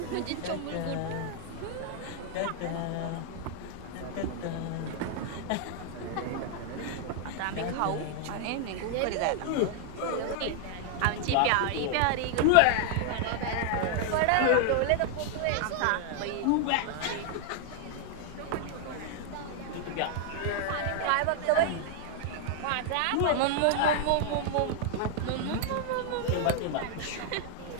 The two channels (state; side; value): different; both; correlation 0.00